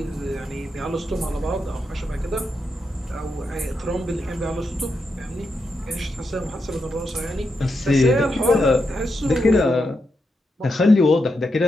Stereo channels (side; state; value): both; normal; correlation 0.85